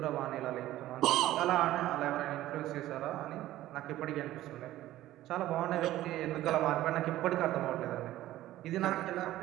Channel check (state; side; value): quieter; left; 14.8 dB